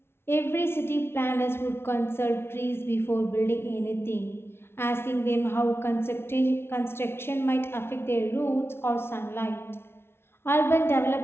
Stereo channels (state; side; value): late; right; 0.12 ms